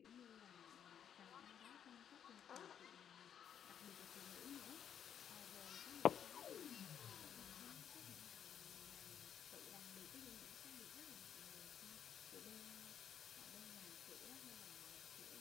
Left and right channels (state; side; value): quieter; right; 8.8 dB